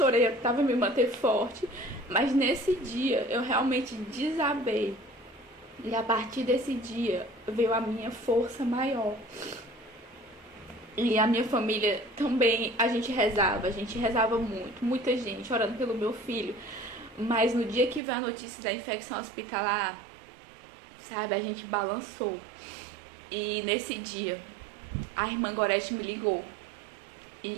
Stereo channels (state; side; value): drops out; left; at 18.0 s